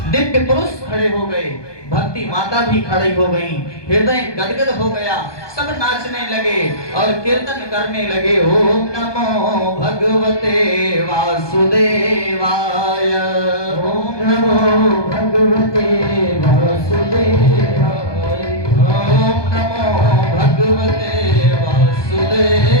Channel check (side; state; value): right; late; 1.2 ms